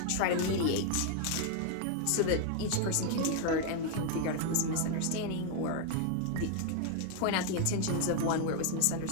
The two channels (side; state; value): both; different; correlation 0.01